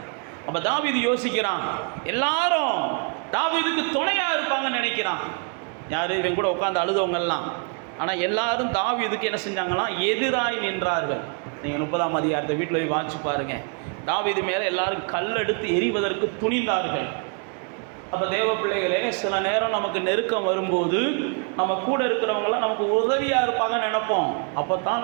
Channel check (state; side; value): quieter; left; 39.5 dB